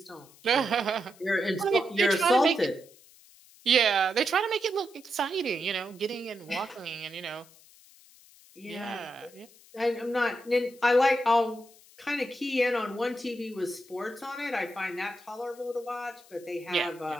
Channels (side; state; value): left; noise; hiss, 25 dB below the sound